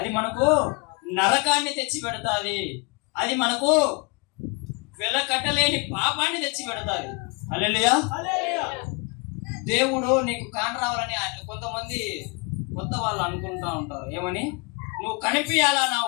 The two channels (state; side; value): quieter; right; 31.0 dB